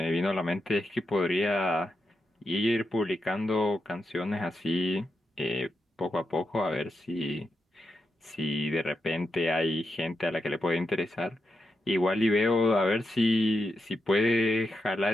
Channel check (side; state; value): both; normal; correlation 0.86